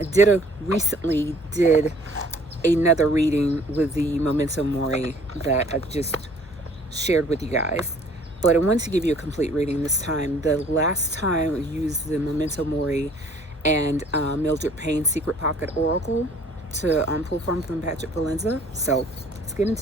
Recently did another reading with the Memento Mori that I just shared with you guys. But I wanted to give you a complete reading this time. The last time I used the Memento Mori and Mildred Payne's Secret Pocket Oracle to pull from Patrick Valenza. So let's get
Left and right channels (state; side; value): normal; both; correlation 0.56